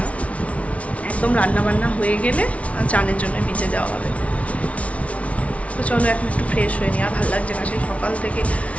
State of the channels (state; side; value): late; right; 0.064 ms